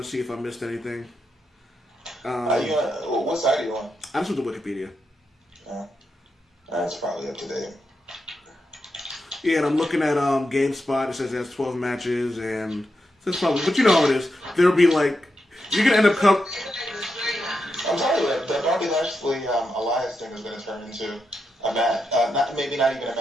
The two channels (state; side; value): normal; both; correlation 0.86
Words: see if I missed anything. What side are you on? I'm just with the Wikipedia. That's probably up to date. Yeah, and I'm looking at GameSpot. It says it has 12 matches, and that's probably. But you know how it is. There'll be you're gonna end up I'm telling you that Bobby Lashley Elias thing is gonna turn into a match. Not even a